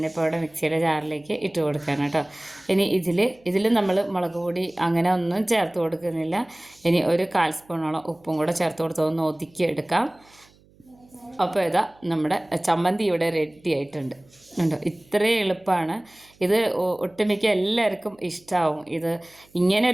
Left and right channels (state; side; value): noise; right; hum, 30 dB below the sound